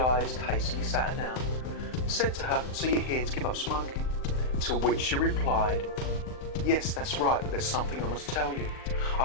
hastily sat her down, said to her, "So you're here to give up smoking?" To which she replied, Yes, that's right, but there's something I must tell you.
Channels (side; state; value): right; late; 39 ms